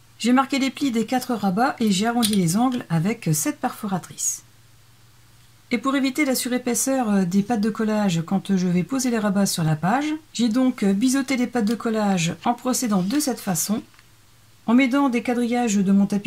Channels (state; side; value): identical; both; correlation 1.00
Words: J'ai marqué les plis des 4 rabats et j'ai arrondi les angles avec cette perforatrice. Et pour éviter la surépaisseur des pattes de collage quand je vais poser les rabats sur la page, j'ai donc biseauté les pattes de collage en procédant de cette façon. En m'aidant des quadrillages de mon